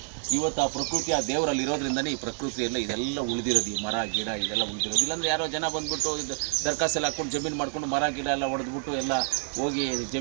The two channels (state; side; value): silent; left; 59 dB below the other